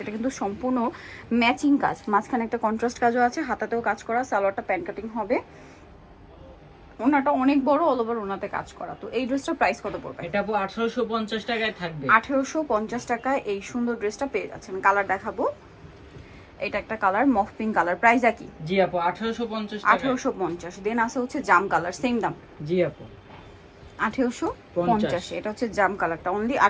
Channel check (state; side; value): identical; both; correlation 1.00